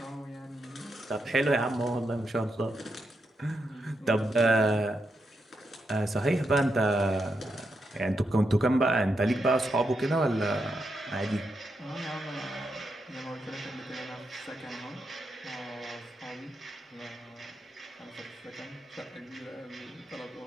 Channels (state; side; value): normal; both; correlation 0.84